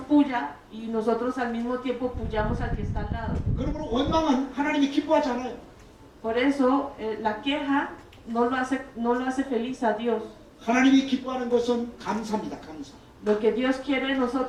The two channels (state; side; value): identical; both; correlation 1.00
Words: puya y nosotros al mismo tiempo puyamos al que está al lado. 그러므로 원망은 하나님이 기뻐하지 않아요. Por eso la queja no lo hace feliz a Dios. 하나님이 기뻐하는 것은 감사입니다. 감사. Lo que Dios quiere de